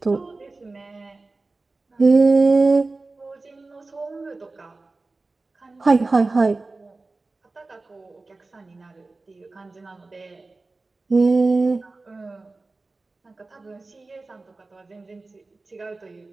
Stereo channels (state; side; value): quieter; left; 3.4 dB